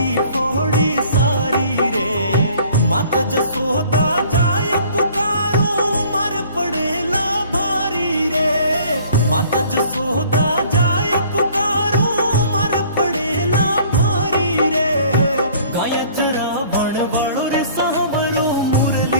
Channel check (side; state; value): both; inverted; correlation -0.53